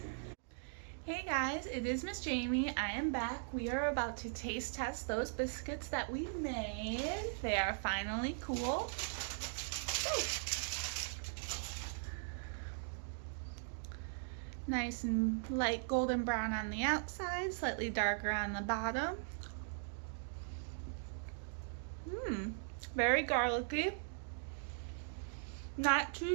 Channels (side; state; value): left; silent; digital silence